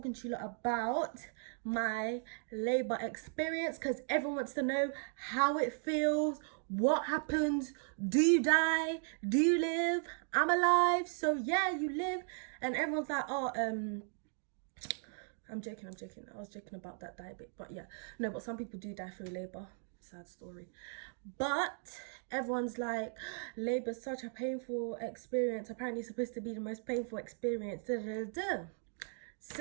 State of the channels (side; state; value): left; silent; 53 dB below the other